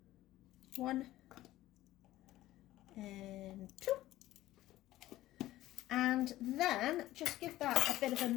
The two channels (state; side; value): quieter; right; 15.6 dB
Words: 1 and 2. And then just give that a bit of a